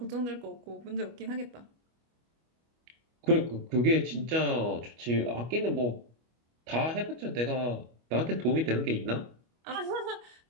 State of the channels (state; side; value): late; left; 25 ms